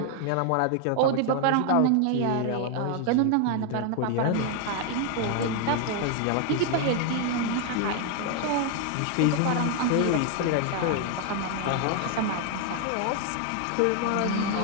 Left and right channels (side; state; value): both; different; correlation 0.00